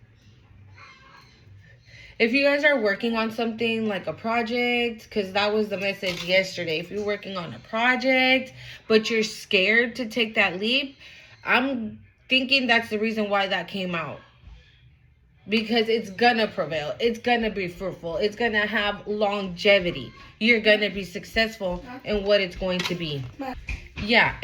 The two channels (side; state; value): both; identical; correlation 1.00